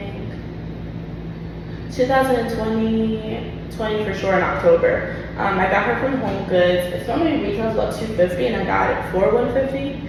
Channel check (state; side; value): identical; both; correlation 1.00